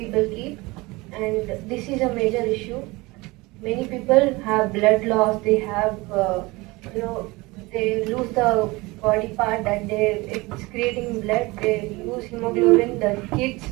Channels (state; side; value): quieter; left; 22.9 dB